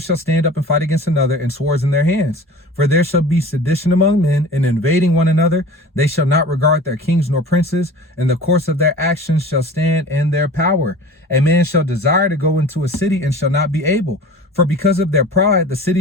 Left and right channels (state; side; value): normal; both; correlation 0.40